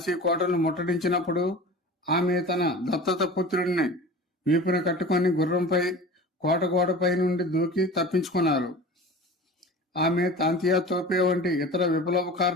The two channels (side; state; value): both; normal; correlation 0.36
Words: కోటను ముట్టడించినప్పుడు ఆమె తన దత్తత పుత్రుడిని వీపున కట్టుకొని గుర్రంపై కోట గోడపై నుండి దూకి తప్పించుకున్నారు. ఆమె తాంతియా తోపే వంటి ఇతర